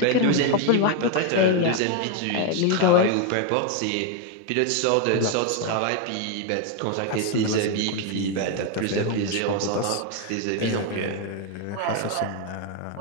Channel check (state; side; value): different; both; correlation 0.01